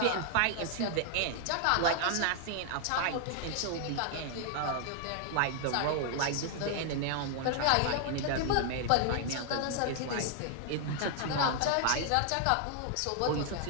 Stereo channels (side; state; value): both; different; correlation 0.00